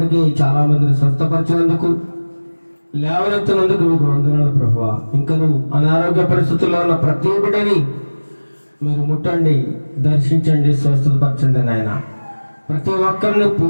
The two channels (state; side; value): inverted; both; correlation -1.00